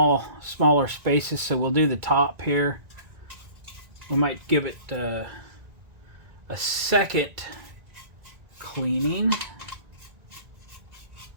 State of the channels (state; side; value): late; left; 1.9 ms